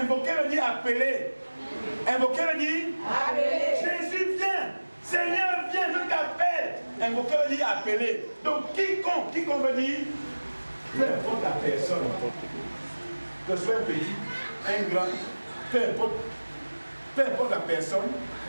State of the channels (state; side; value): inverted; both; correlation -1.00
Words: veut dire appeler. Invoquer veut dire appeler. Jésus vient. Seigneur vient, je t'appelle. Invoquer veut dire appeler. Donc quiconque veut dire peu importe la personne. Que ce soit un petit, un grand, peu importe la personne